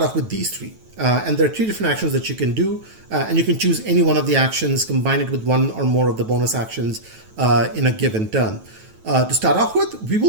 off with these 3. And there are 3 different actions that you can do, and you can choose any one of the actions, combine it with one or more of the bonus actions in a given turn. To start off with, we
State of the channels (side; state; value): left; late; 9.2 ms